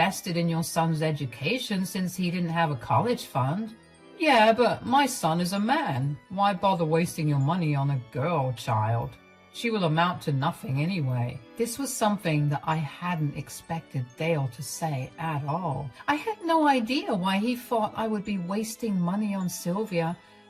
in your son's education since he didn't have a college fund. Yeah, but my son is a man. Why bother wasting your money on a girl child? She will amount to nothing anyway. This was something that I hadn't expected Dale to say at all. I had no idea why he thought I would be wasting money on Sylvia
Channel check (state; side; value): identical; both; correlation 1.00